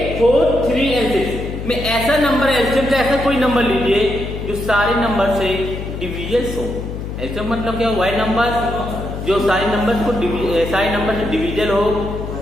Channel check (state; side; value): noise; left; hum, 7 dB below the sound